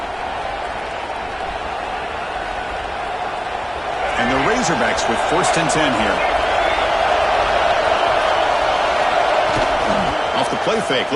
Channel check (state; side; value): identical; both; correlation 1.00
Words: And the Razorbacks with 1st and 10 here. Off the play fake,